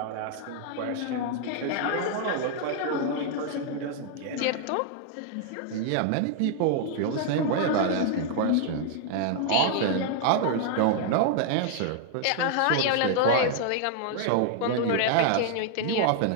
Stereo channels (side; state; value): both; different; correlation 0.00